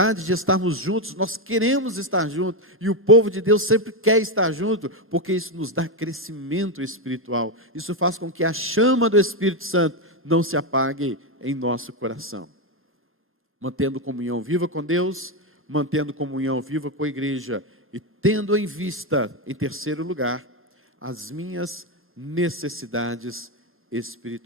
de estarmos juntos. Nós queremos estar juntos, e o povo de Deus sempre quer estar junto, porque isso nos dá crescimento espiritual. Isso faz com que a chama do Espírito Santo não se apague em nosso coração. Mantendo comunhão viva com Deus, mantendo comunhão viva com a igreja, e tendo em vista, em terceiro lugar, as minhas necessidades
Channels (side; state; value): both; normal; correlation 0.06